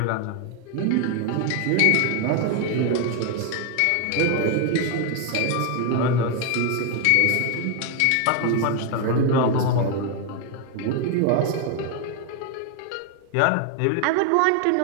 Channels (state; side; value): different; both; correlation 0.01